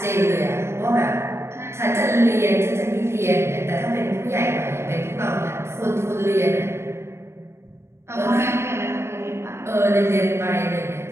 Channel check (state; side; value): late; left; 0.13 ms